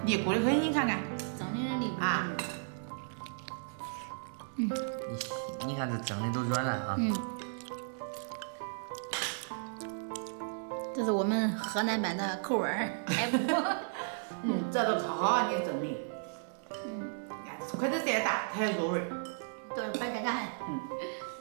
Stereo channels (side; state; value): left; silent; 55 dB below the other